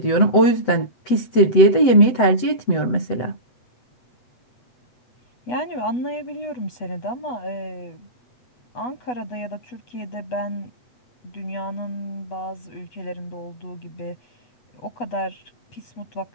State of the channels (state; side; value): late; right; 8.0 ms